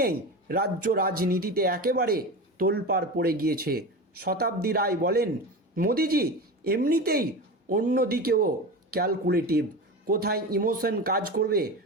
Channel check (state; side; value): normal; both; correlation 0.26